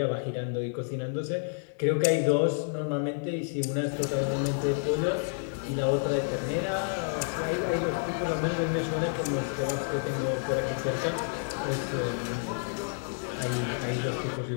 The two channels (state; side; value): silent; right; 58 dB below the other